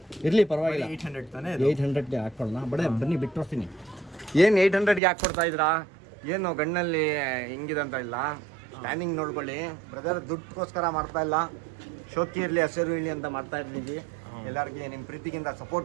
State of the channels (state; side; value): drops out; left; at 5.0 s